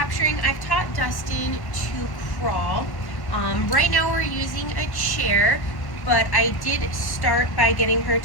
I've taught Dustin to crawl. Right now we're using a chair, but I did start by getting her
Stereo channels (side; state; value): right; late; 1.1 ms